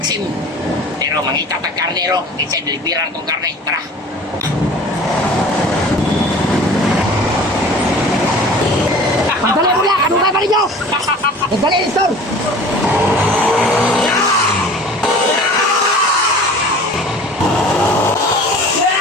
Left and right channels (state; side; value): normal; both; correlation 0.44